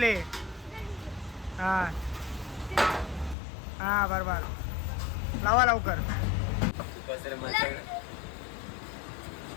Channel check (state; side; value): drops out; right; at 3.4 s